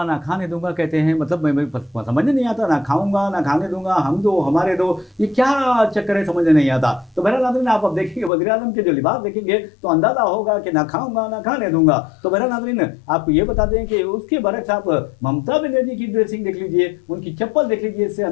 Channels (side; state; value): right; drops out; at 8.3 s